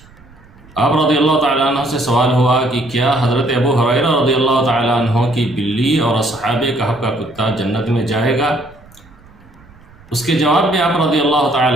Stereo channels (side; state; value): right; noise; rumble, 25 dB below the sound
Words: آپ رضی اللہ تعالیٰ عنہ سے سوال ہوا کہ کیا حضرت ابو ہریرہ رضی اللہ تعالیٰ عنہ کی بلی اور اصحاب کہف کا کتا جنت میں جائے گا؟ اس کے جواب میں آپ رضی اللہ